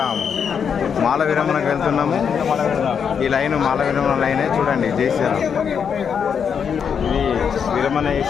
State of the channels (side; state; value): right; quieter; 7.0 dB